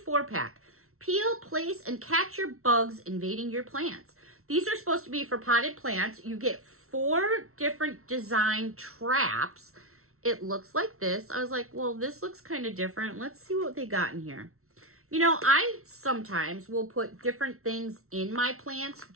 Peel, place, and catch your bugs invading your plants. These are supposed to be for potted plants. You get 4 different design traps. It looks like this. I was like, well, this looks kind of different. Let's see what they got in here. I sometimes will put different things in my plants,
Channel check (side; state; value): left; late; 0.63 ms